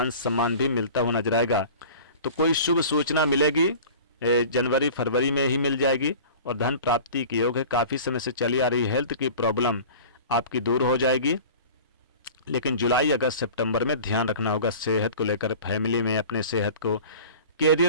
सम्मान भी मिलता हुआ नजर आएगा। तो कोई शुभ सूचना मिलेगी, जनवरी फरवरी में ही मिल जाएगी और धन प्राप्ति के योग है। काफ़ी समय से चली आ रही हेल्थ की प्रॉब्लम आपकी दूर हो जाएगी। लेकिन जुलाई, अगस्त, सितंबर में ध्यान रखना होगा सेहत को लेकर, फैमिली में अपने सेहत को।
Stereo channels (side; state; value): both; inverted; correlation -0.40